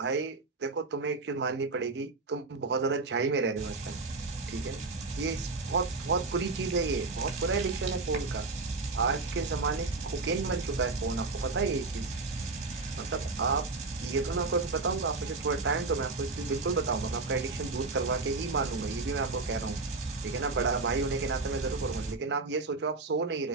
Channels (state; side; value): quieter; left; 3.7 dB